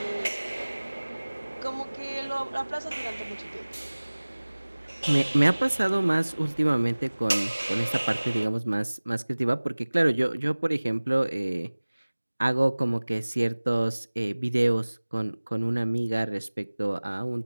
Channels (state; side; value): inverted; both; correlation -1.00